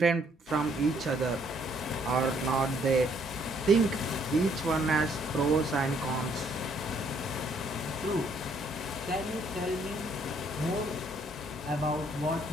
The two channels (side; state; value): both; normal; correlation 0.67